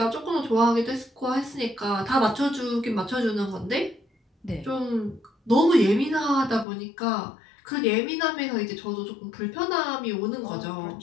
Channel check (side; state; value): right; drops out; at 6.7 s